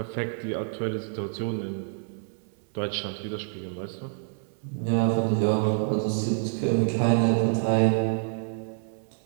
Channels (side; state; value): left; silent; 60 dB below the other